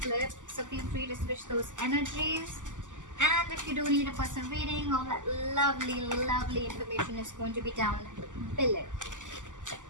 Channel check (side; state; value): left; late; 0.87 ms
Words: so feel free to switch those energies. And if you do need a personal reading, all that lovely information is going to be down below.